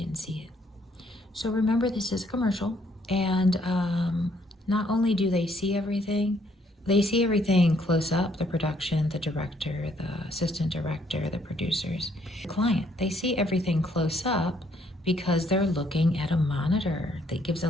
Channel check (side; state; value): both; normal; correlation 0.68